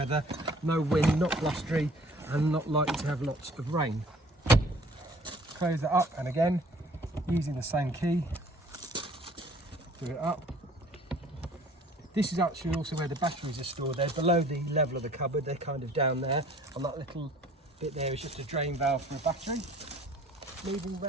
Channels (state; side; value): normal; both; correlation 0.53